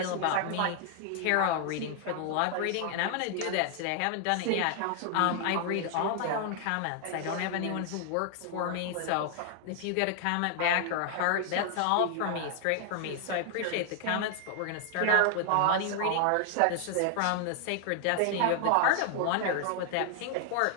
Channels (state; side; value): different; both; correlation 0.00